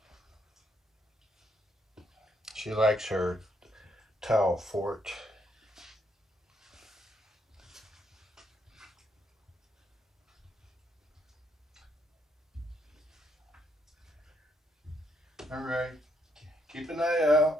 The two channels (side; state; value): both; normal; correlation 0.74